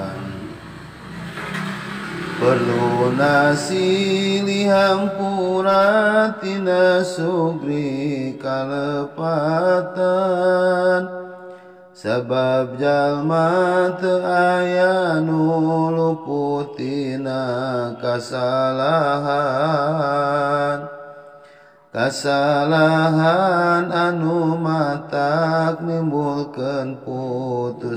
Perlu silih hampura tina sugri kalepatan, sabab jalma teu aya nu luput tina kasalahan. Kasalahan anu matak nimbulkeun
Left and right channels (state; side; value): identical; both; correlation 1.00